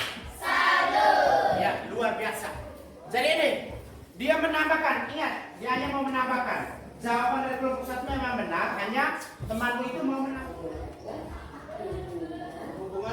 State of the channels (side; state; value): both; identical; correlation 1.00